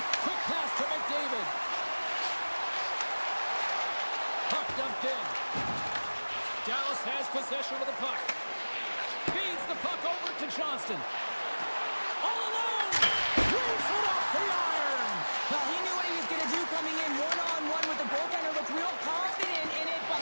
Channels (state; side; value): inverted; both; correlation -1.00